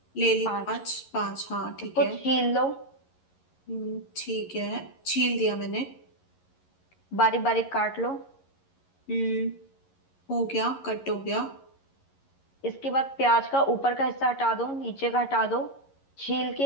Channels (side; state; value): right; late; 11 ms